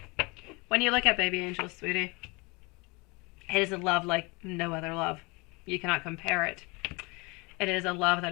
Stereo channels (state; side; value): quieter; right; 27.3 dB